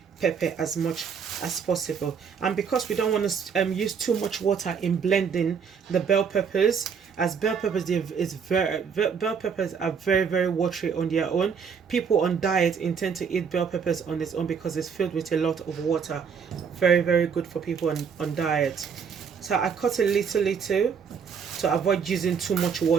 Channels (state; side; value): quieter; left; 6.5 dB